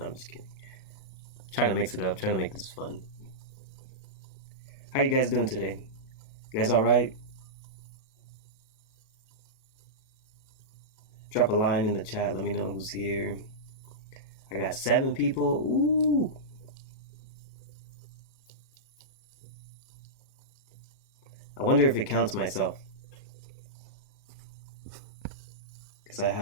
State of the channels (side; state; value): right; late; 37 ms